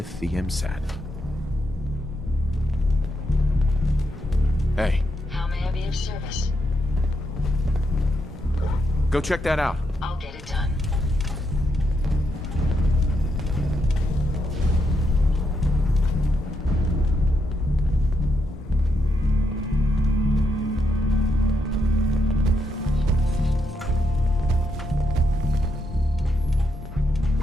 the MSAT. Hey. How may I be of service? Go check that out. I'll get it done.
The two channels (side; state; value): both; normal; correlation 0.80